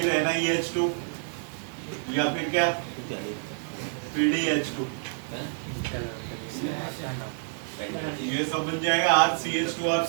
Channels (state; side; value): silent; left; 59 dB below the other